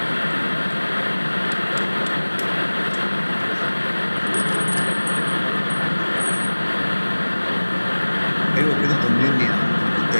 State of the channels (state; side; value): inverted; both; correlation -1.00